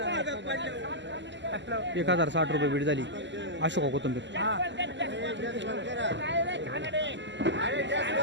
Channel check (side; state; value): left; late; 0.53 ms